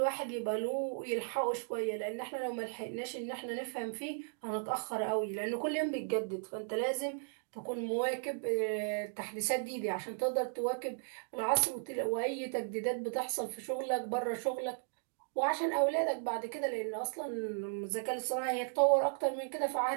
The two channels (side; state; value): left; silent; digital silence